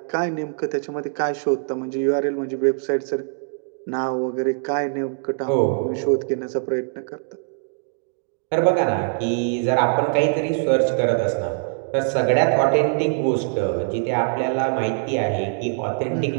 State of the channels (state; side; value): silent; left; digital silence